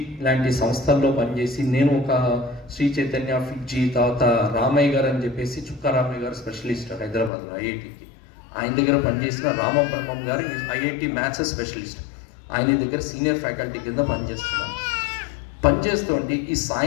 లాంటి సంస్థల్లో పనిచేసి, నేను ఒక శ్రీ చైతన్య ఫిడ్జీ, తర్వాత రామయ్య గారు అని చెప్పేసి, చుక్కా రామయ్య గారు స్పెషలిస్ట్ హైదరాబాద్లో IITకి, ఆయన దగ్గర పనిచేసిన రామబ్రహ్మం గారు IIT మ్యాథ్స్ స్పెషలిస్ట్, ఆయన దగ్గర సీనియర్ ఫ్యాకల్టీ కింద పనిచేస్తుంటే ఈ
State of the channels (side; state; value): right; drops out; at 7.3 s